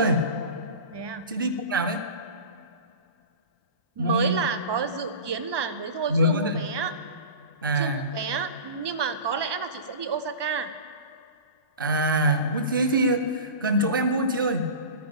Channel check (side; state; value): both; inverted; correlation -0.33